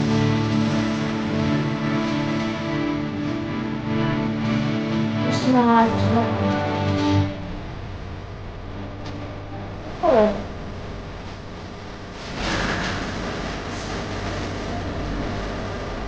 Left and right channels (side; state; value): both; identical; correlation 1.00